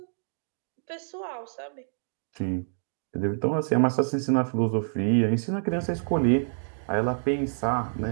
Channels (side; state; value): left; silent; digital silence